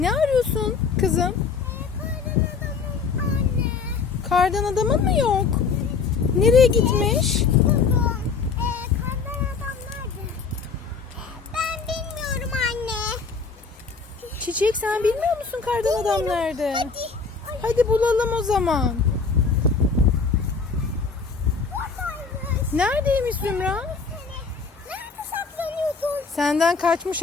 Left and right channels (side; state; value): right; quieter; 5.1 dB